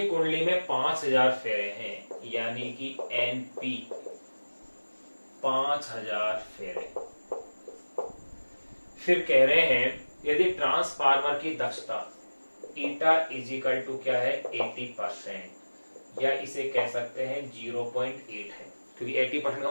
कुंडली में 5000 फेरे हैं यानी कि एनपी 5000 फेरे। फिर कह रहे हैं यदि ट्रांसफार्मर की दक्षता ईटा इजिकल टू क्या है 80%, या इसे कह सकते हैं 0.8 है, क्योंकि 80% का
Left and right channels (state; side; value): inverted; both; correlation -1.00